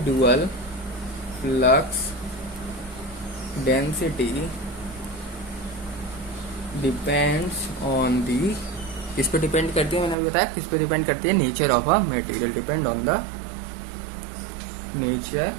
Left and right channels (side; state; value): left; drops out; at 10.2 s